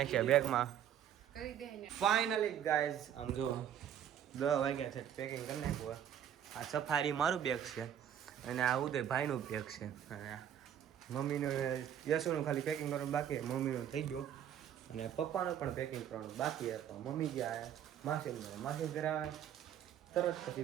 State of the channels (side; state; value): left; quieter; 9.8 dB